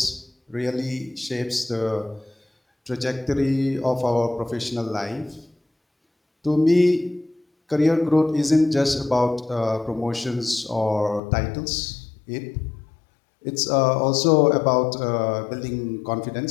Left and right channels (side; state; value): right; drops out; at 11.2 s